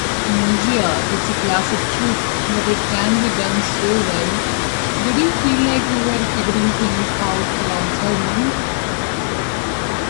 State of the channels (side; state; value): right; silent; digital silence